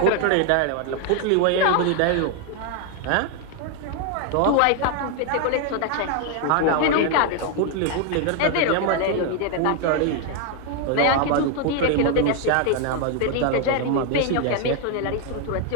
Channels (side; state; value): both; different; correlation 0.01